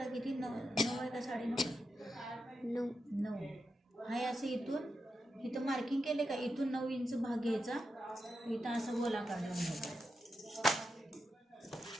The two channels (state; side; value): normal; both; correlation 0.87